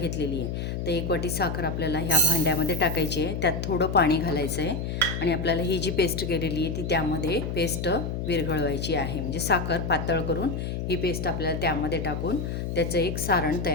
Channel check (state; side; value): noise; left; hum, 3 dB below the sound